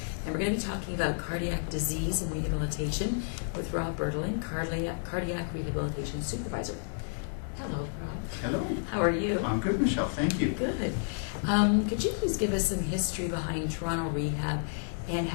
and we're going to be talking about cardiac disease and rehabilitation with Rob Bertelink, cardiac rehabilitation supervisor. Hello, Rob. Hello. How are you? I'm good, Michelle. Thank you. Good. Could you please give us some history behind Toronto Rehab and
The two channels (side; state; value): right; silent; digital silence